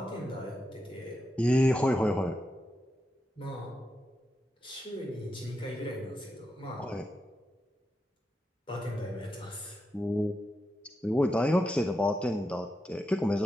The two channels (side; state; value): both; normal; correlation 0.87